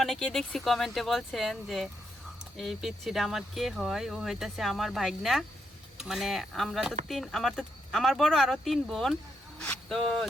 অনেকেই, দেখছি কমেন্টে বলছেন যে এই পিচ্ছিটা আমার কে হয়, ও হইতাছে আমার ভাইগনা। মানে আমরা তো আমার বড় আরো 3 বোন, তো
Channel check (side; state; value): both; normal; correlation 0.80